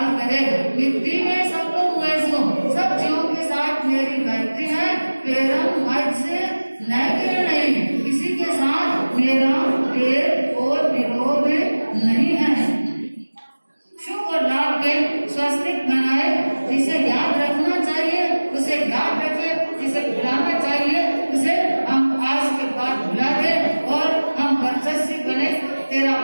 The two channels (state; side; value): inverted; both; correlation -1.00